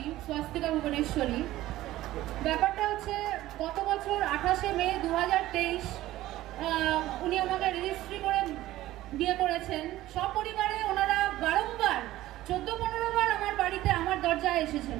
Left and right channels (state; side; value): quieter; left; 15.6 dB